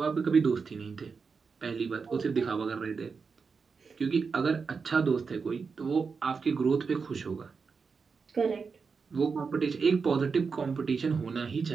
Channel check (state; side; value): quieter; left; 5.2 dB